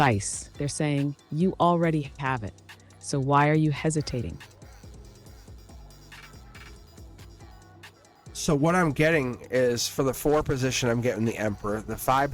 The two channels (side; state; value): both; identical; correlation 1.00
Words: They're saying, you already have it. So why are you hesitating? So what I'm getting is, for the 4 position, I'm getting the Emperor. The 5